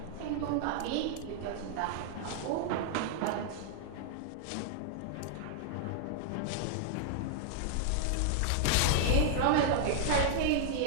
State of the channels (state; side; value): different; both; correlation -0.01